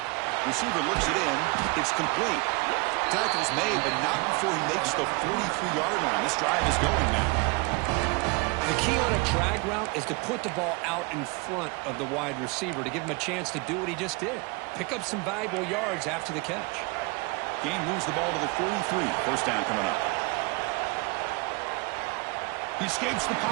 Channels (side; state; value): left; quieter; 27.5 dB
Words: Receiver looks it in. It's complete. Tackle's made, but not before he makes the 43-yard line. This drive is going now. The key on a drag route is to put the ball out in front of the wide receiver to give him a chance to do what he just did. Pick up some valuable yards after the catch. Gain moves the ball to the 43. First down coming up. He escapes the